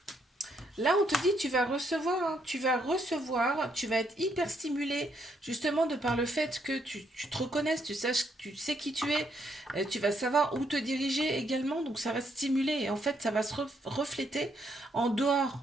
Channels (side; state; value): both; normal; correlation 0.74